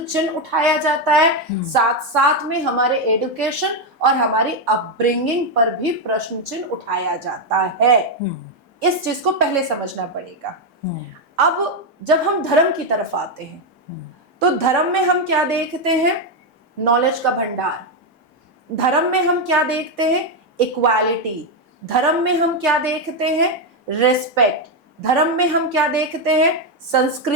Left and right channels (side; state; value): both; normal; correlation 0.05